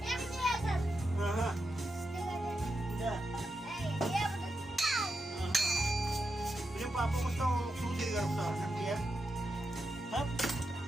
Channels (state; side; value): normal; both; correlation 0.87